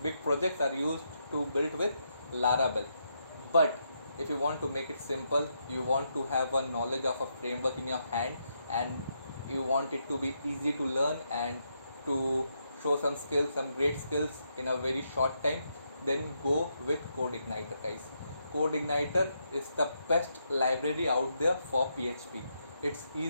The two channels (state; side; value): inverted; both; correlation -0.80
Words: projects are used to build with Laravel. But if you want to make it simple, you want to have a knowledge of a framework in your hand, and you want it to be easy to learn and to show some skills, some great skills in a very short time, then go with CodeIgniter, guys. CodeIgniter is the best library out there for PHP. It's